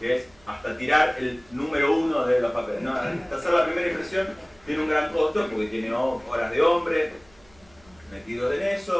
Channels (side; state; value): right; noise; hum, 30 dB below the sound